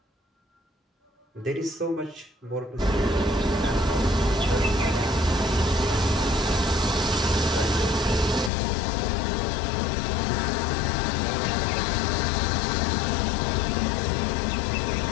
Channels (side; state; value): right; drops out; at 8.5 s